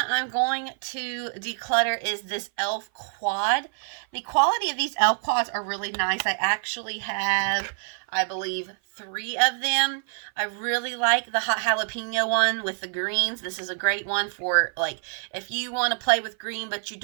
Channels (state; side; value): silent; left; 56 dB below the other